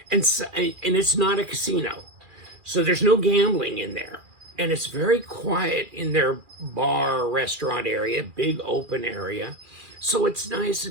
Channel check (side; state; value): left; late; 2.4 ms